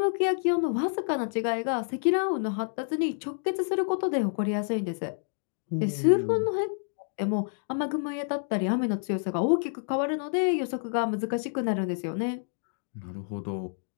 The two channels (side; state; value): right; silent; digital silence